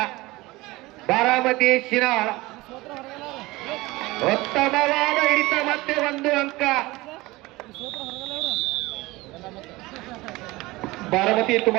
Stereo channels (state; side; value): quieter; left; 20.7 dB